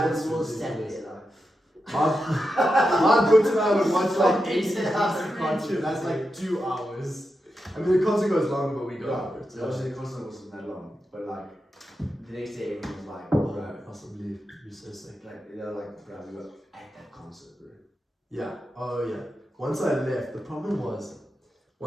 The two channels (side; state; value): both; normal; correlation 0.88